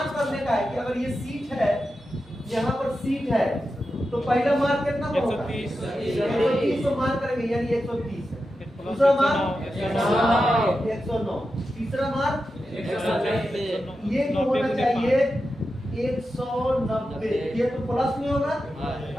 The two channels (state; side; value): normal; both; correlation 0.90